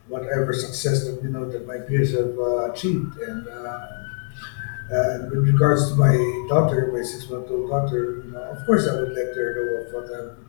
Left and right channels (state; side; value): silent; right; 59 dB below the other